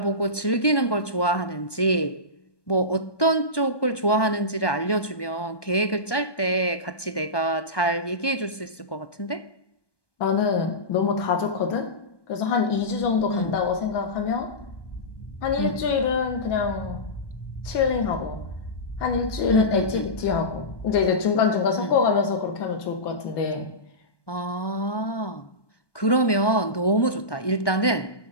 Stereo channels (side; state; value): right; late; 1.2 ms